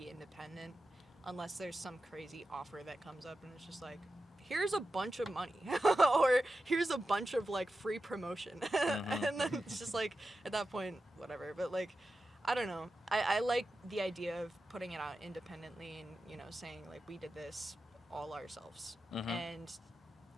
independent, unless there's some crazy offer that comes up and it's just like, here's a bunch of money, or here's a bunch of like free promotion, and then it's just like at that point, whatever. But like, I don't know. I like the idea of putting it out independently and, you know, saying like we did this all ourselves, and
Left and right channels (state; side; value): normal; both; correlation 0.91